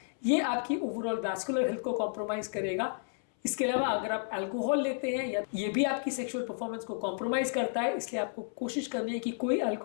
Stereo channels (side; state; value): right; silent; 57 dB below the other